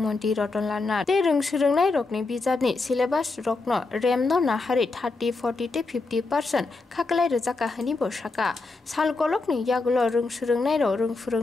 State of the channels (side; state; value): right; quieter; 3.7 dB